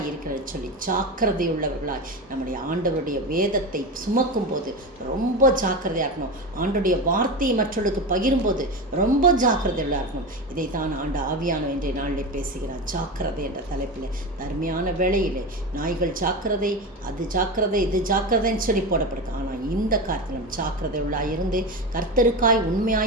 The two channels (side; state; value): both; normal; correlation 0.22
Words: சொல்லி ஜாக்கிரதை உள்ளவர்களாய் நம்முடைய ஆண்டவருடைய வேதத்தை சுமக்கும் போது ரொம்ப ஜாக்கிரதையாக இருக்கணும். ஆண்டவருடைய வார்த்தையை மற்றவர்களுக்கு பகிரும்போது ரொம்ப ஜாக்கிரதையாக இருக்கணும். இதை தான் ஆவியானவர் இன்றைய நாளில் பேசுகிறார். ஜாக்கிரதை என்ற தலைப்பில் அருமையான வேளையிலே நாய்கள் ஜாக்கிரதை, அது ஜாக்கிரதை, இது ஜாக்கிரதைன்னு சொல்லி போடப்படுது. ஆனால் இந்த காரியத்திலும் ஜாக்கிரதை உள்ளாய் இருந்து கர்த்தருக்காய்